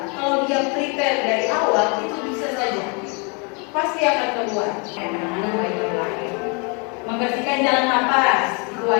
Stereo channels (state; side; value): quieter; right; 33.6 dB